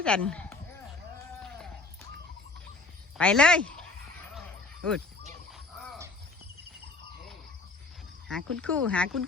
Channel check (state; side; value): quieter; right; 3.6 dB